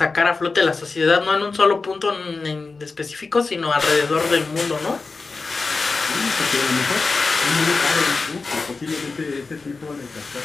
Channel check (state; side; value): quieter; right; 4.1 dB